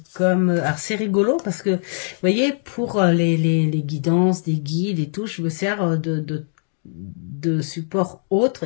comme... Alors, c'est rigolo parce que, vous voyez, pour les guidances, des guides et tout, je me sers de supports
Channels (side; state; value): right; silent; digital silence